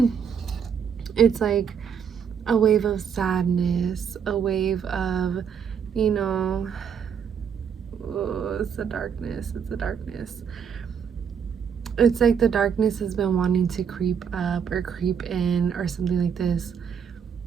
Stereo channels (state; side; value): quieter; left; 7.2 dB